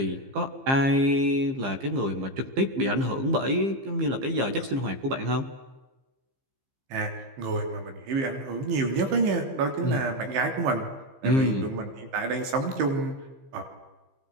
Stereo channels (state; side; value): late; left; 15 ms